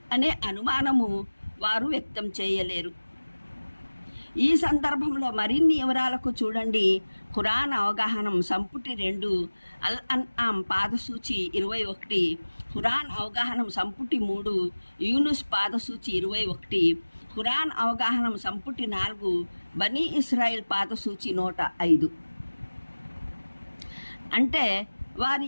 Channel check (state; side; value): inverted; both; correlation -1.00